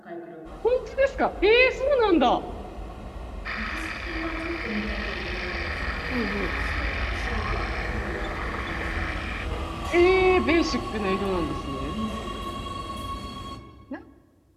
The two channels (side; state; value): both; identical; correlation 1.00